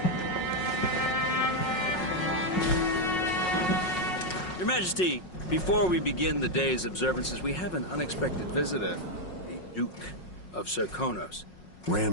Your Majesty, before we begin the day's observances, we have an unexpected visitor, the Duke of Serkonos.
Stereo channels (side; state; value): right; late; 5.5 ms